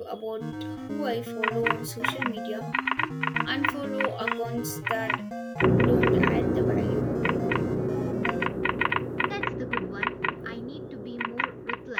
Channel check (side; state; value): both; identical; correlation 1.00